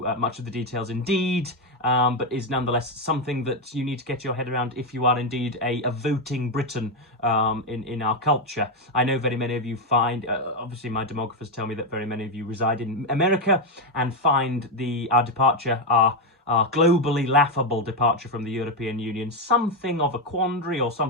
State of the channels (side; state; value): both; normal; correlation 0.06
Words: much of the details indeed. But is nonetheless something that you need to get your head around if you are indeed a voting Briton in our culture. I know very many of you find, obviously my demographers tell me that very many of you reside in America and find our departure, our globally laughable departure from the European Union, something of a quandary or